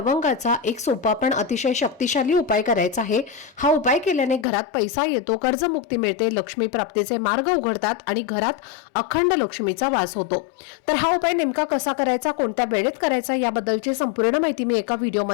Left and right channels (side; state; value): right; drops out; at 4.5 s